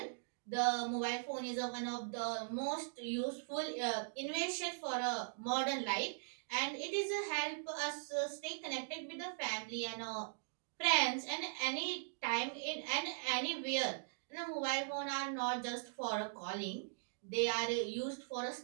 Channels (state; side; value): silent; left; digital silence